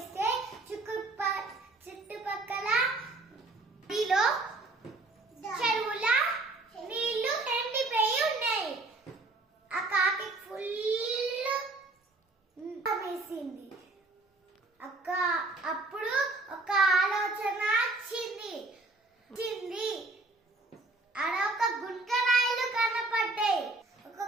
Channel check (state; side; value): quieter; left; 3.2 dB